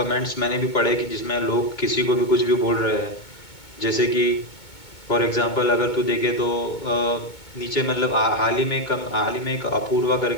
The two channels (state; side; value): late; right; 2.2 ms